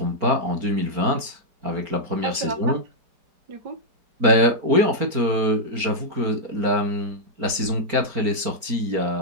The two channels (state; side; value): late; left; 4.4 ms